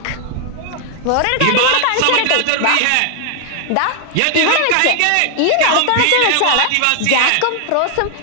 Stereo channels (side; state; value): both; different; correlation 0.00